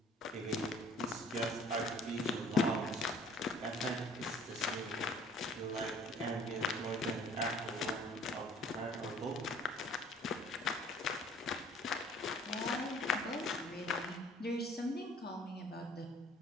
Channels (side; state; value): both; normal; correlation 0.54